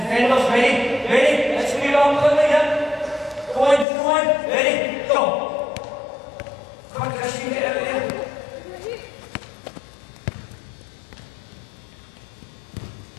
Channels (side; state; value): right; drops out; at 3.9 s